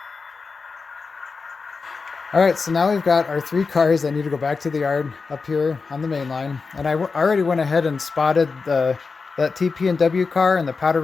All right, so now we've got our 3 cars that need to go back to the yard up here on the main line. And I already went ahead and spotted that TP&W car and the Powder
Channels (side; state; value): right; quieter; 4.6 dB